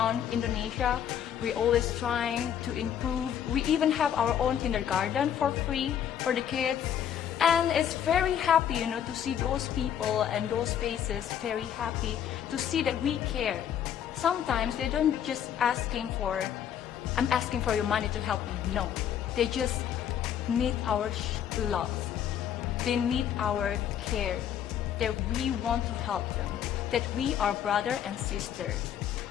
Indonesia. We always trying to improve. We even have our own kindergarten for free for the kids. And it's very happy, you know, to see those people and those faces very happy to see that we care. Sometimes they don't just asking for, I'm asking for your money to help me. No, they just need our love. They need our care, that we want to help them, that we are brother and sister.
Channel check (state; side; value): quieter; right; 9.4 dB